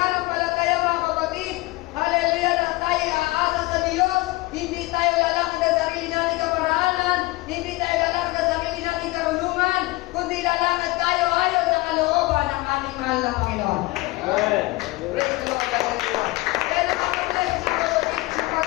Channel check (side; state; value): right; quieter; 21.3 dB